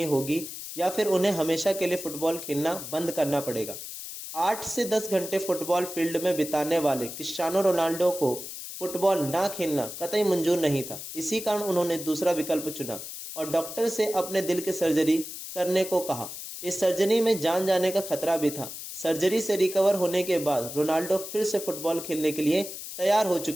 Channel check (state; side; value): noise; left; hiss, 9 dB below the sound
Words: होगी या फिर उन्हें हमेशा के लिए फुटबॉल खेलना बंद करना पड़ेगा। 8 से 10 घंटे फुटबॉल फील्ड में बिताने वाले क्रिस्टियानो रोनाल्डो को फुटबॉल ना खेलना कतई मंजूर नहीं था। इसी कारण उन्होंने दूसरा विकल्प चुना और डॉक्टर से अपने दिल की सर्जरी करने को कहा। इस सर्जरी में जान जाने का खतरा भी था। सर्जरी से रिकवर होने के बाद रोनाल्डो फिर से फुटबॉल खेलने के लिए तैयार हो